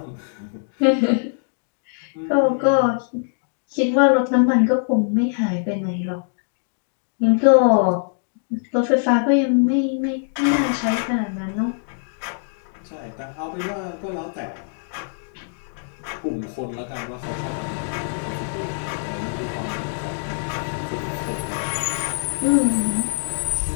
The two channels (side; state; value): right; silent; digital silence